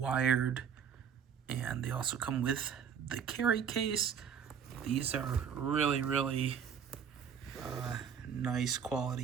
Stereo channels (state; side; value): quieter; left; 7.7 dB